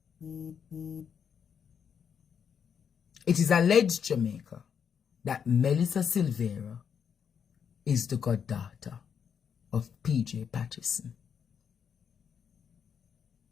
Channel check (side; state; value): right; quieter; 7.4 dB